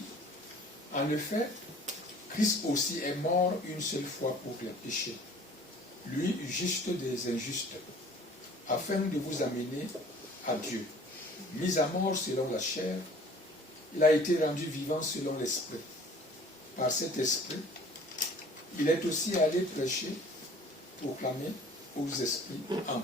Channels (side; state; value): both; normal; correlation 0.50